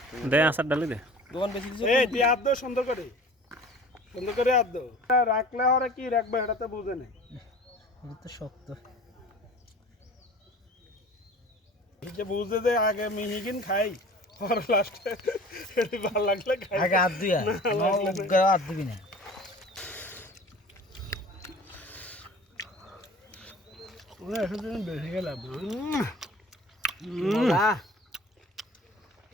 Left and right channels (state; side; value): normal; both; correlation 0.43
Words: দে আসার ডালি দে দোকান বেশি দিছে এই তুই আদ দাও সুন্দর করে আদ দাও রাখলে ওরা কি রাখবে এটা তো বুঝে নেই itu tuh শক্ত এই যে বুঝে দে আগে মিহিগিন খাই আর লাস্টে এটা ভালো লাগলে খাই আগে হাত দিয়া না হাত দিবি না ওরা এসে বেশি গেলাম